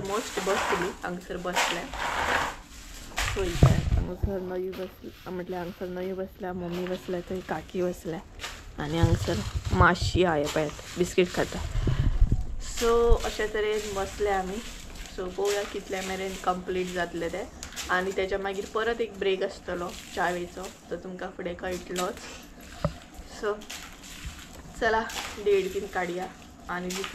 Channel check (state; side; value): identical; both; correlation 1.00